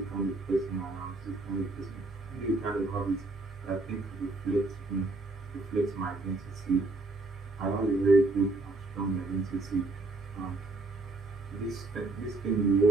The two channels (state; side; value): quieter; left; 3.1 dB